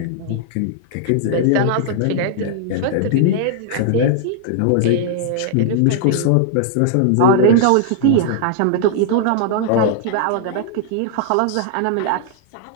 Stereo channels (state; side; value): different; both; correlation -0.01